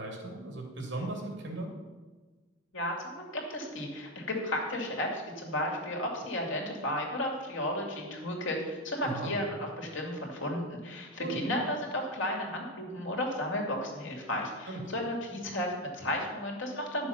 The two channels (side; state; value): both; normal; correlation 0.09